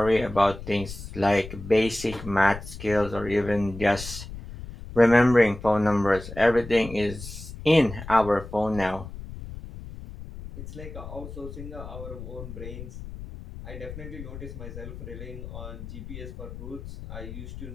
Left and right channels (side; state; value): left; noise; rumble, 12 dB below the sound